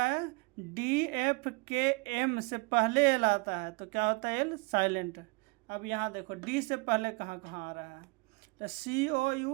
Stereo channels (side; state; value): left; quieter; 29.8 dB